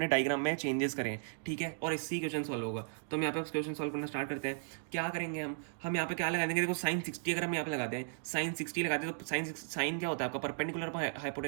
डायग्राम में चेंजेस करें, ठीक है। और इससे क्वेश्चन सॉल्व होगा। तो हम यहाँ पे क्वेश्चन सॉल्व करना स्टार्ट करते हैं। क्या करेंगे हम यहाँ पे क्या लगा देंगे, देखो साइन 60 अगर हम यहाँ पे लगाते हैं, साइन 60 लगाते हैं, तो साइन क्या होता है आपका, परपेंडिकुलर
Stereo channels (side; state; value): left; silent; digital silence